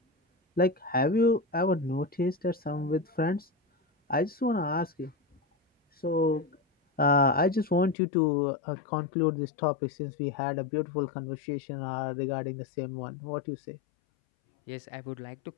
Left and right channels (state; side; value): drops out; right; at 8.0 s